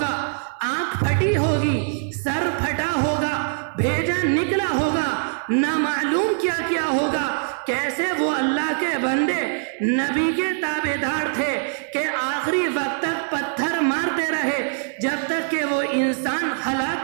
آنکھ پھٹی ہوگی، سر پھٹا ہوگا، بھیجا نکلا ہوگا، نہ معلوم کیا کیا ہوگا، کیسے وہ اللہ کے بندے نبی کے تابع دار تھے کہ آخری وقت تک پتھر مارتے رہے جب تک کہ وہ انسان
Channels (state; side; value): silent; left; digital silence